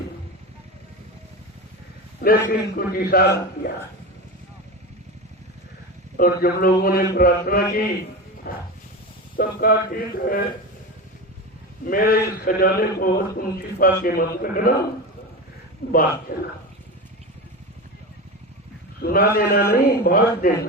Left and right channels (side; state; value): both; normal; correlation 0.24